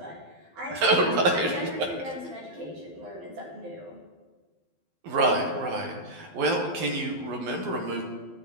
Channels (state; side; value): late; left; 12 ms